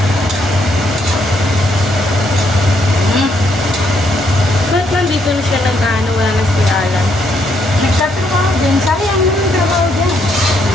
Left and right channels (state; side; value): noise; left; hum, 25 dB below the sound